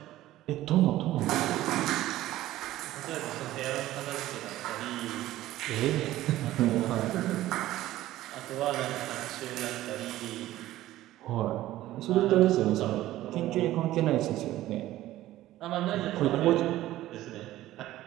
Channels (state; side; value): quieter; left; 15.1 dB